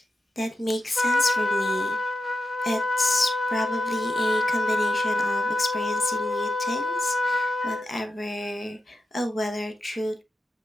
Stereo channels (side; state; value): both; normal; correlation 0.89